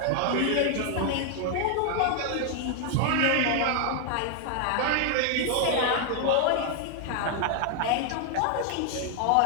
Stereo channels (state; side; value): different; both; correlation 0.00